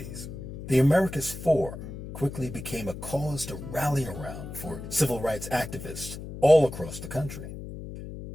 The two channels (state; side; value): noise; left; hum, 10 dB below the sound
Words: The Americus Four quickly became a cause to rally around for civil rights activists all across the country.